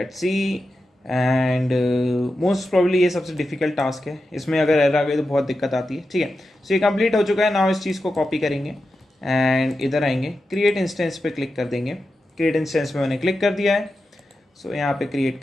see and most probably ये सबसे डिफिकल्ट टास्क है, इसमें अगर एरर आ गई तो बहुत दिक्कत आती है, ठीक है। सो ये कंप्लीट हो चुका है। नाउ इस चीज़ को कॉपी करेंगे एंड इधर आएंगे, क्रिएट इंस्टेंस पे क्लिक कर देंगे। क्रिएट इंस्टेंस पे मैंने क्लिक कर दिया है। सो यहाँ पे क्रिएट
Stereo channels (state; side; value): normal; both; correlation 0.90